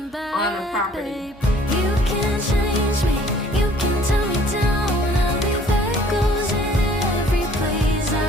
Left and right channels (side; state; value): both; normal; correlation 0.55